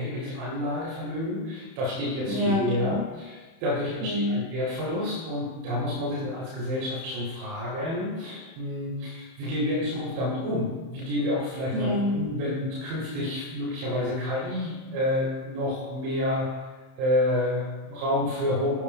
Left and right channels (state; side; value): late; left; 31 ms